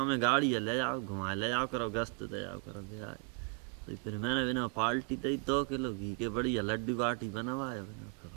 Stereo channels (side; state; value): left; quieter; 35.6 dB